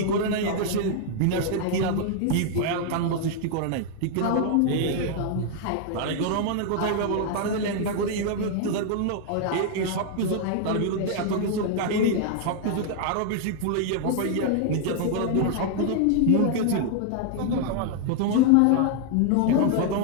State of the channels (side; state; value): both; different; correlation 0.00